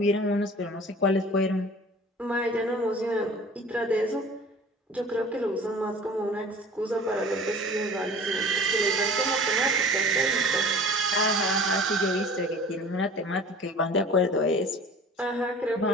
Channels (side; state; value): both; normal; correlation 0.43